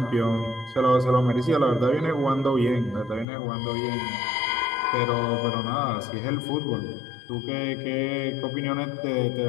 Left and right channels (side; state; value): right; drops out; at 3.2 s